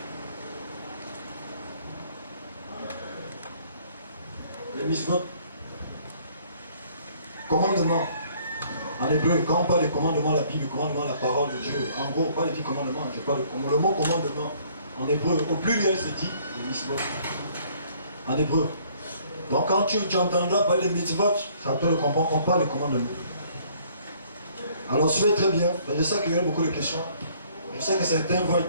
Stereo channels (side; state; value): both; inverted; correlation -0.60